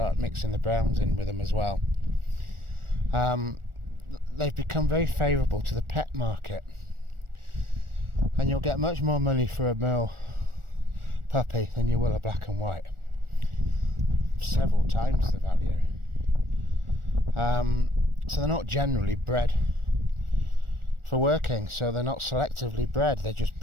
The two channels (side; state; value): left; late; 1.4 ms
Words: mixing the browns in with them as well. They've become very favourable to the pet market, and you'll get much more money for a Merle puppy than you will a black and white. Several times the value. So they're not generally bred for working, so they're not selectively bred, they're just